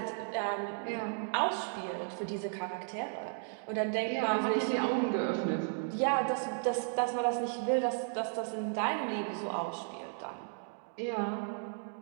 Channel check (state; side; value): silent; left; 55 dB below the other